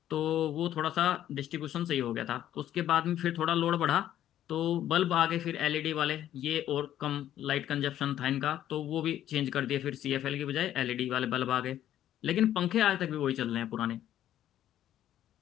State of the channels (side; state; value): right; quieter; 11.8 dB